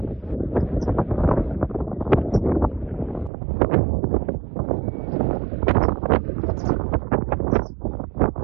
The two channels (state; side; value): drops out; left; at 3.3 s